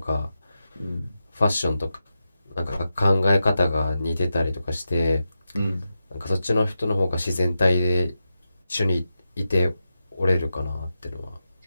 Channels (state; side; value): inverted; both; correlation -0.90